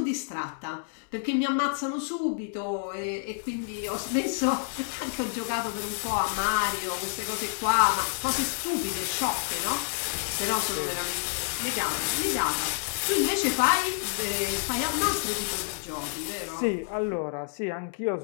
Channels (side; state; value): right; silent; digital silence